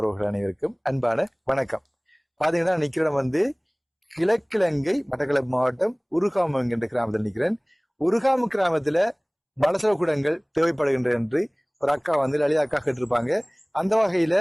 அனைவருக்கும் அன்பான வணக்கம். பாத்தீங்கன்னா நிக்கிற வந்து கிழக்கிழங்கை மட்டக்களப்பு மாவட்டம் உருகாமம் என்கின்ற கிராமத்தில் நிற்கிறேன். உருகாம கிராமத்துல மலசல கூடங்கள் தேவைப்படுகின்ற என்று ஒரு அக்கா வந்து லலிதா அக்கா கேட்டிருப்பாங்க. அந்த வகையில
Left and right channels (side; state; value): both; identical; correlation 1.00